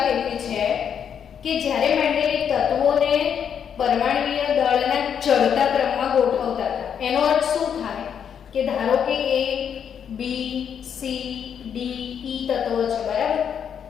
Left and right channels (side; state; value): right; quieter; 8.0 dB